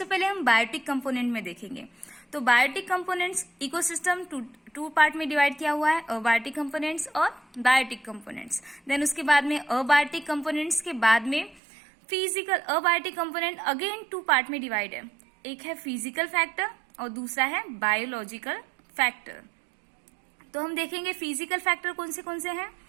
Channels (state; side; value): drops out; left; at 11.6 s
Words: पहले हम बायोटिक कंपोनेंट में देखेंगे। तो biotic components ecosystem two part में डिवाइड किया हुआ है, अबायोटिक कंपोनेंट्स और बायोटिक कंपोनेंट्स। देन उसके बाद में अबायोटिक कंपोनेंट्स के बाद में physical abiotic component again 2 part में डिवाइड है। एक है फिजिकल फैक्टर और दूसरा है बायोलॉजिकल फैक्टर। तो हम देखेंगे फिजिकल फैक्टर कौन से हैं।